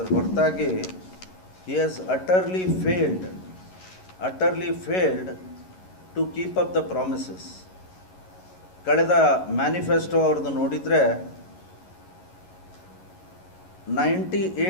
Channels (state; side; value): late; right; 11 ms